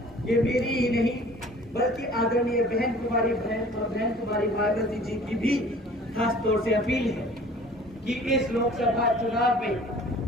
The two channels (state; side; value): normal; both; correlation 0.49